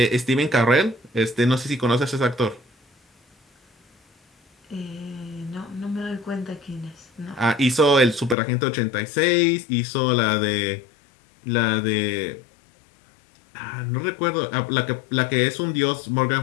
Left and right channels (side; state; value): right; drops out; at 8.3 s